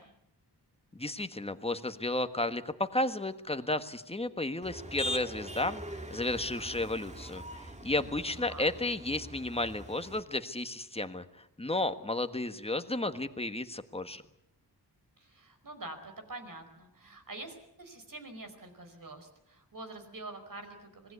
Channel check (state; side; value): normal; both; correlation 0.35